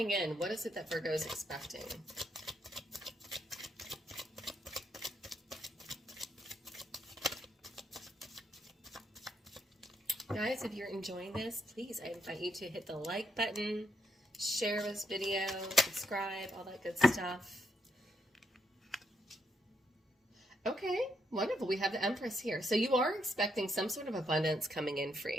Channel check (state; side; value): normal; both; correlation 0.76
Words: in? What is it that Virgo is expecting? Guys, if you're enjoying this, please, I invite you to hit the like button, share this video, subscribe, all that good stuff. Okay, wonderful. We have the Empress here. So you are expecting some sort of abundance coming in for